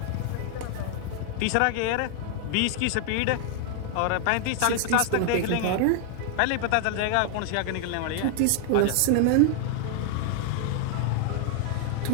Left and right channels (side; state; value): both; different; correlation 0.00